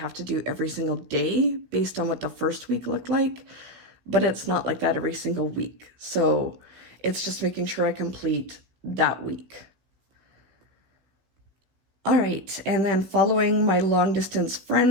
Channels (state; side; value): late; left; 16 ms